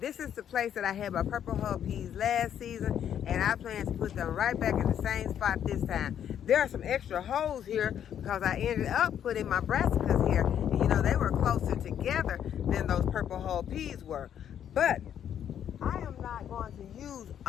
is the place that I had my purple hull peas last season, and I plan to put them right back in the same spot this time. There are some extra holes here because I ended up putting my brassicas here, and you know, they were closer together than those purple hull peas were. But I am not going to use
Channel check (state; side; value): quieter; right; 9.5 dB